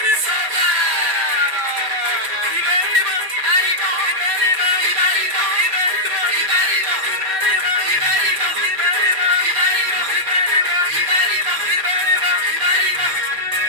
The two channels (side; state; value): left; late; 5.2 ms